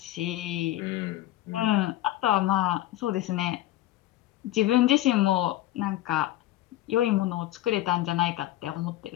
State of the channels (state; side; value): quieter; right; 14.8 dB